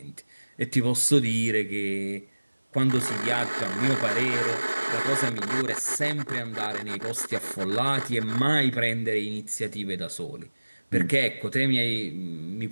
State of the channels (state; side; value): inverted; both; correlation -1.00